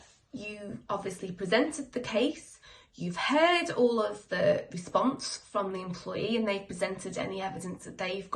you obviously presented the case, you've heard all of the response from the employee, and they've presented any evidence that they've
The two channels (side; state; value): both; identical; correlation 1.00